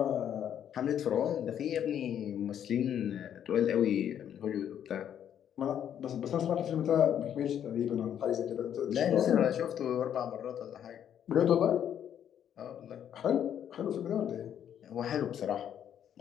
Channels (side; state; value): right; quieter; 9.6 dB